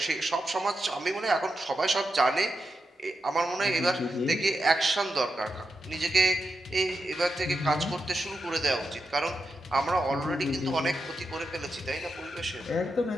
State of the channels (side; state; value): both; normal; correlation 0.88